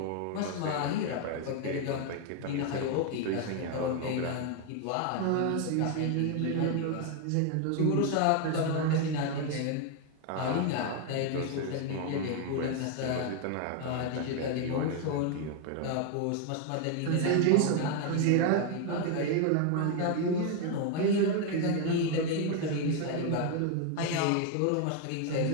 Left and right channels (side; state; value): both; different; correlation 0.01